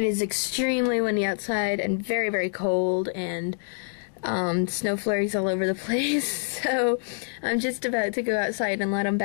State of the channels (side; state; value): right; silent; digital silence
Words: is extremely windy outside and very, very cold, and snow flurries all over the place, so I'm just about to go outside and let them